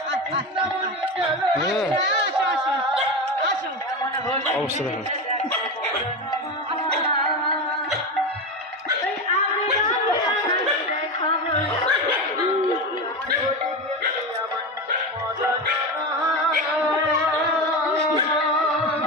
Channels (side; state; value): both; normal; correlation 0.20